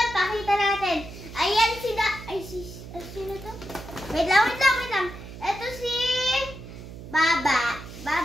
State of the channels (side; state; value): right; noise; hum, 13 dB below the sound